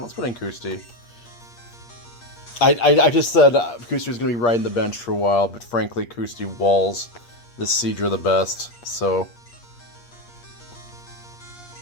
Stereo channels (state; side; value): late; right; 8.4 ms